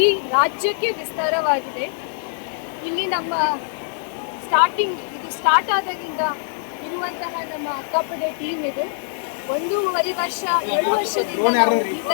ರಾಜ್ಯಕ್ಕೆ ವಿಸ್ತಾರವಾಗಿದೆ. ಇಲ್ಲಿ ನಮ್ಮ ಸ್ಟಾರ್ಟ್ ಆದಾಗಿಂದ ಇರುವಂತಹ ನಮ್ಮ ಅಕ್ಕಪಡೆ ಟೀಮ್ ಇದೆ. 1.5 ವರ್ಷ 2 ವರ್ಷದಿಂದ ನಾವು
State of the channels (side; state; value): right; silent; 64 dB below the other